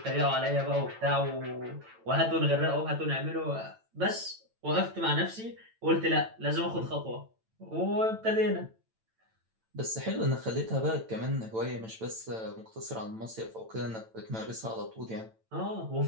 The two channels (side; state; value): left; late; 9.0 ms